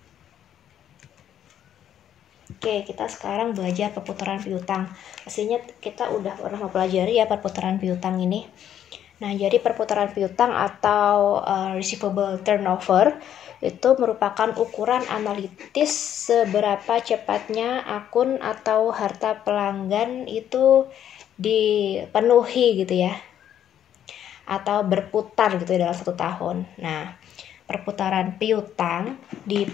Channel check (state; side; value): quieter; right; 10.3 dB